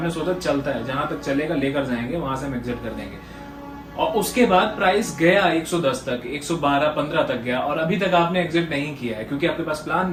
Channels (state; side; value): identical; both; correlation 1.00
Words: सोचा चलता है, जहां तक चलेगा लेकर जाएंगे, वहां से हम एग्जिट कर देंगे। और उसके बाद प्राइस गया 110 तक, 112, 15 तक गया और अभी तक आपने एग्जिट नहीं किया है क्योंकि आपके पास प्लान